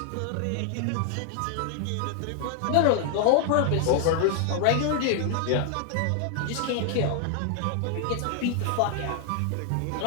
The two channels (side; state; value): both; different; correlation 0.00